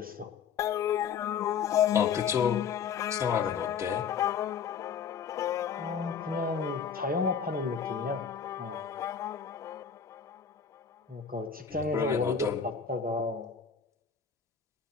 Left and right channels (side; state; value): right; quieter; 6.8 dB